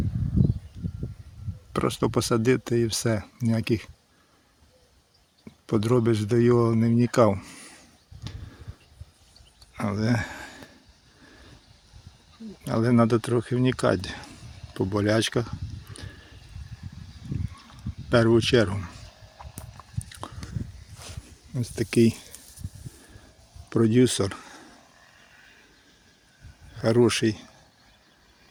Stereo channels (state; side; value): identical; both; correlation 1.00